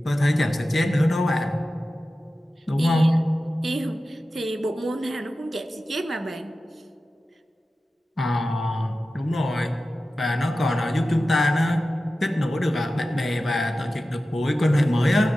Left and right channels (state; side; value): normal; both; correlation 0.94